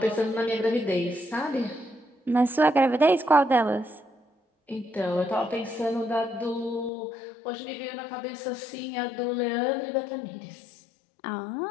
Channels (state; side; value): drops out; right; at 6.9 s